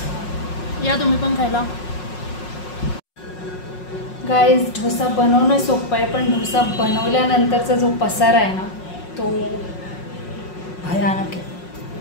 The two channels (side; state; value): right; late; 5.5 ms